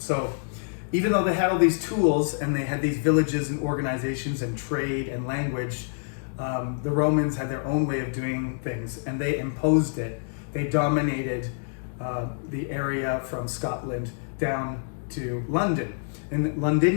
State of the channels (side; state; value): right; silent; digital silence